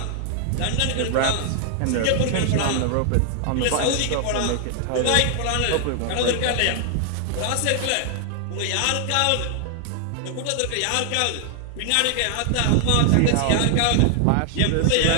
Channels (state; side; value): different; both; correlation 0.00